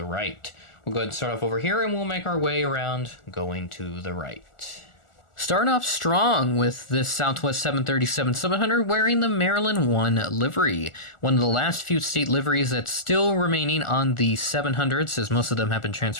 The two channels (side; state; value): right; late; 1.4 ms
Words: right. We'll go ahead and start off over here and we'll make our way around going to the right. Starting off strong with this Southwest 737-700 wearing the Maryland 1 livery. One of the last few state liveries that's still remaining on the 700s, as most of them have been